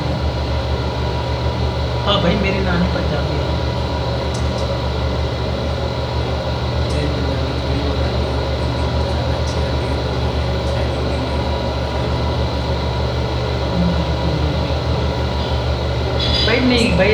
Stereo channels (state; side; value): identical; both; correlation 1.00